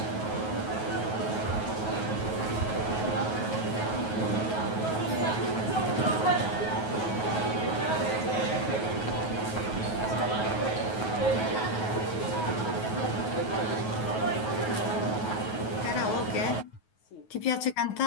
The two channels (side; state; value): right; late; 9.3 ms